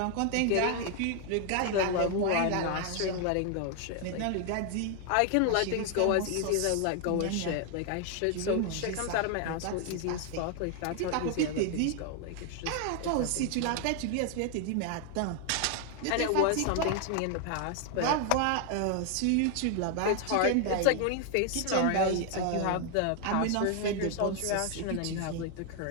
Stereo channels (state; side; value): different; both; correlation 0.00